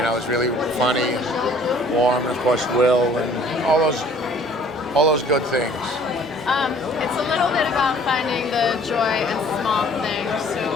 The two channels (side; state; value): both; normal; correlation 0.54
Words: know, it was really funny and warm, and of course, Will, and all those good things. It's a little bit about finding the joy in small things. So